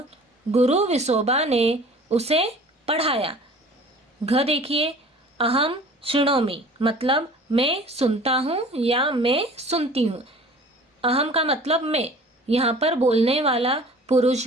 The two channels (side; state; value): both; normal; correlation 0.46